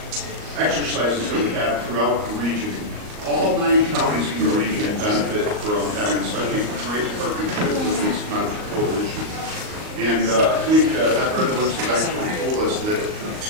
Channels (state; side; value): late; left; 38 ms